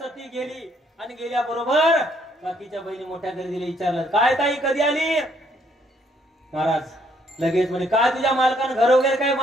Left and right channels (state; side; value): normal; both; correlation 0.68